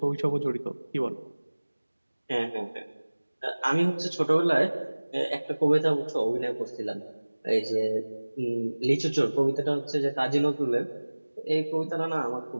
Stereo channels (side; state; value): both; inverted; correlation -1.00